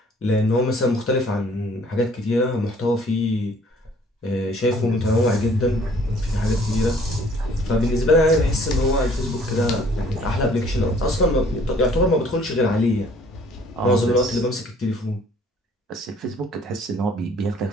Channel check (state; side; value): normal; both; correlation 0.57